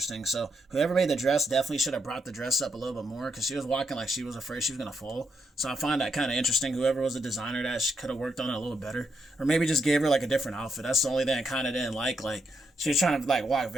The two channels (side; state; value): both; normal; correlation 0.80